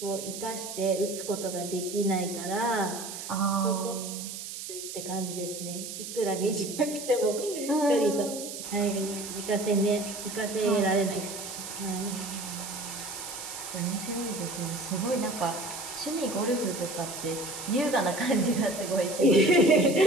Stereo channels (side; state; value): right; noise; hiss, 8 dB below the sound